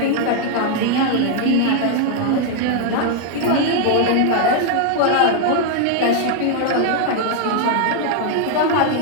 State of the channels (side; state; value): both; different; correlation 0.00